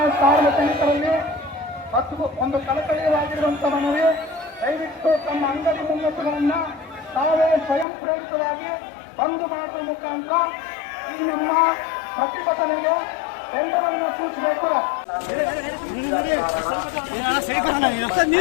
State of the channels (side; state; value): right; drops out; at 7.9 s